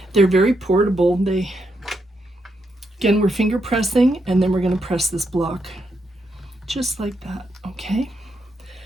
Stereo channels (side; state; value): both; normal; correlation 0.81